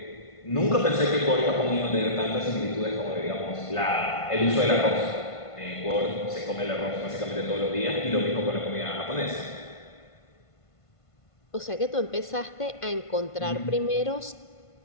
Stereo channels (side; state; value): right; late; 1.5 ms